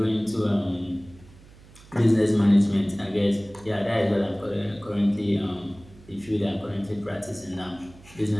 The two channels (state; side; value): noise; right; hum, 23 dB below the sound